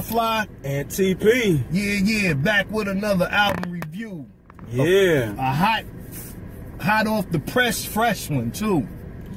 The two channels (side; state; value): both; identical; correlation 1.00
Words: Fly. And TP. Yeah. Back with another album review. Yeah. A hot off the press, fresh one too.